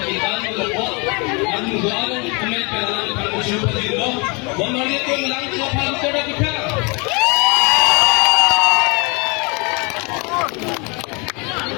ng lapot ang doanong kumet kailangan pang-usyo pa dito bumalit yung lang ko pang-usyo na kita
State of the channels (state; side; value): quieter; right; 30.6 dB